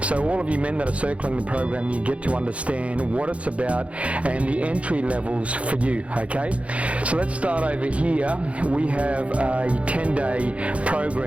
so all of you men that are circling the program, you get to understand what it's about and the entry levels for you. Okay, so let's start over here. We have a 10-day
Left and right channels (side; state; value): left; late; 0.063 ms